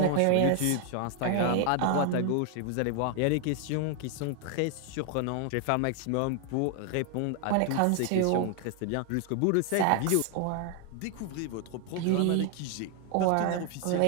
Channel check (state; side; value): different; both; correlation 0.00